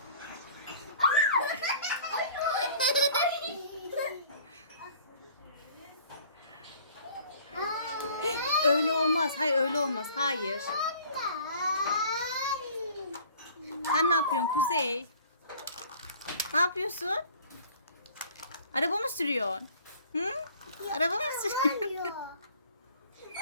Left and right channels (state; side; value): inverted; both; correlation -0.51